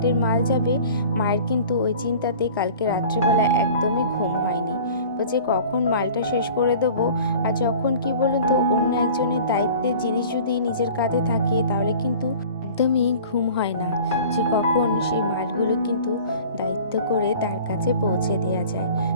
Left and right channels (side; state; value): both; inverted; correlation -0.44